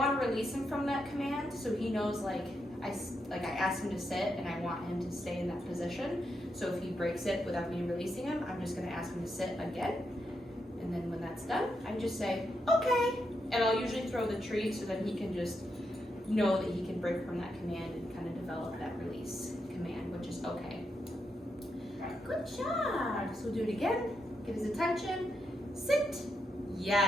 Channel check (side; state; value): both; normal; correlation 0.83